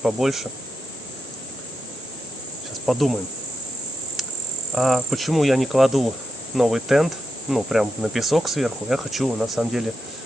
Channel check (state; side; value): normal; both; correlation 0.85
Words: Сейчас подумаем. А почему я не кладу новый тент, прям на песок сверху? Я хочу, на самом деле,